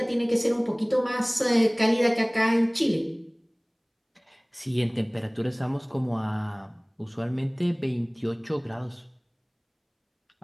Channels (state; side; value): identical; both; correlation 1.00